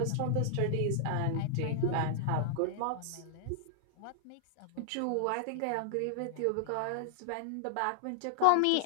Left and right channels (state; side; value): different; both; correlation -0.01